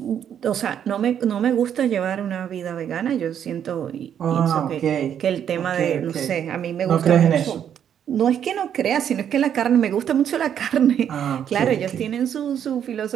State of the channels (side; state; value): left; quieter; 9.1 dB